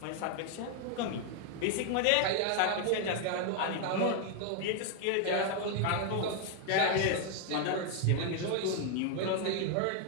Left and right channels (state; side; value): different; both; correlation 0.00